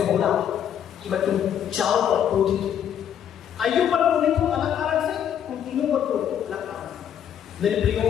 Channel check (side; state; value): right; quieter; 9.3 dB